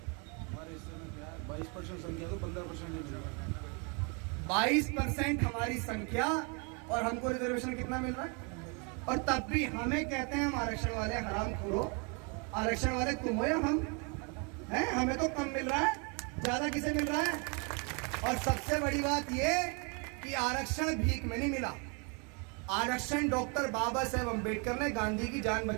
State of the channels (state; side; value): quieter; left; 34.3 dB